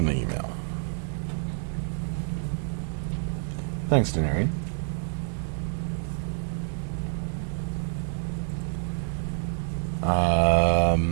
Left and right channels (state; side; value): silent; left; digital silence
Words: the email. Thanks, Denarian.